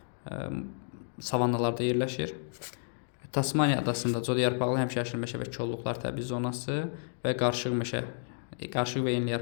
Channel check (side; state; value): right; silent; digital silence